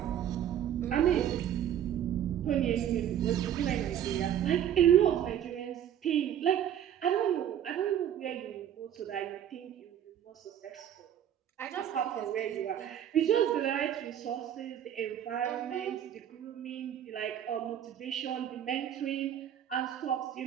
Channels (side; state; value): left; quieter; 10.2 dB